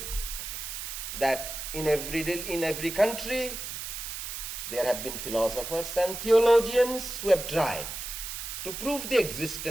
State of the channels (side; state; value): right; noise; hiss, 7 dB below the sound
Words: that in every country there have been philosophers and theologians who have tried to prove the